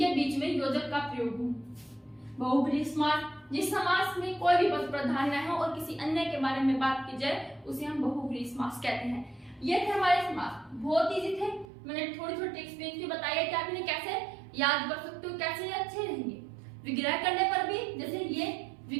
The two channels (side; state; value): left; drops out; at 11.7 s